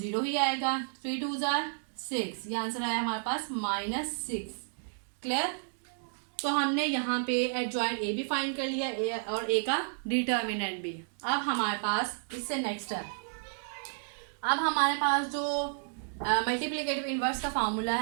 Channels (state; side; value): silent; left; digital silence